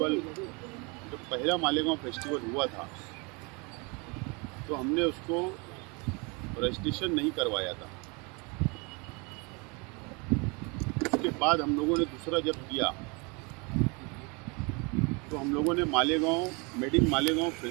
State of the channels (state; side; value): quieter; left; 30.1 dB